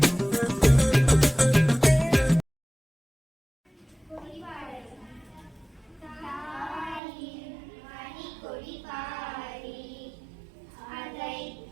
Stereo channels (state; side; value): drops out; left; at 7.0 s